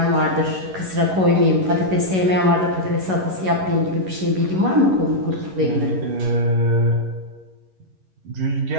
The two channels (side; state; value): left; late; 11 ms